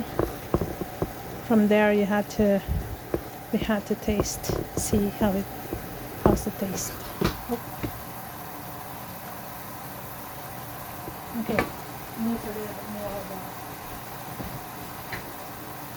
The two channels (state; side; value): identical; both; correlation 1.00